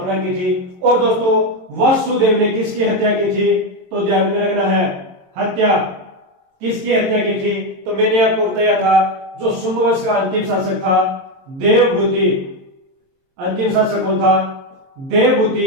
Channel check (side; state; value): left; late; 22 ms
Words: की थी। और दोस्तों वासुदेव ने किसकी हत्या की थी? तो ध्यान में रखना है, हत्या किसकी हत्या की थी? तो मैंने आपको बताया था जो शुंग वंश का अंतिम शासक था देवभूति। अंतिम शासक कौन था?